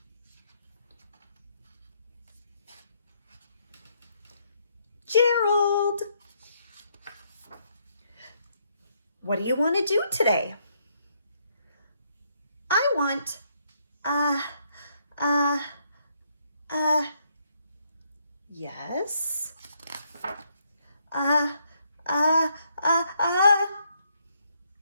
Gerald, what do you want to do today? I want, yes,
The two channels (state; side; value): inverted; both; correlation -0.73